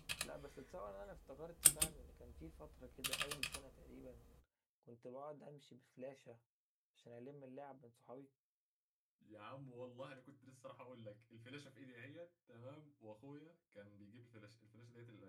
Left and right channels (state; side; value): identical; both; correlation 1.00